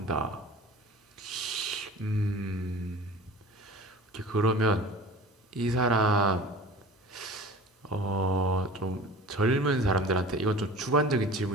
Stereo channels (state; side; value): normal; both; correlation 0.40